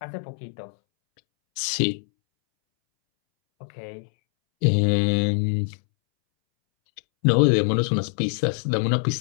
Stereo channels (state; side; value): silent; right; 63 dB below the other